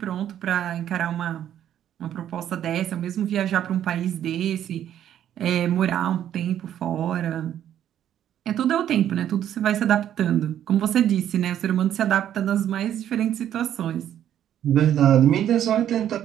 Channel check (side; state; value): left; quieter; 10.7 dB